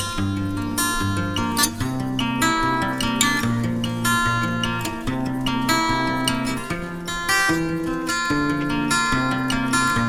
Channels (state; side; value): identical; both; correlation 1.00